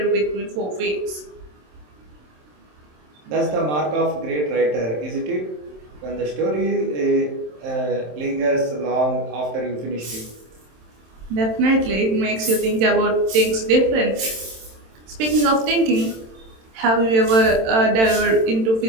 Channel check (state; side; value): late; left; 27 ms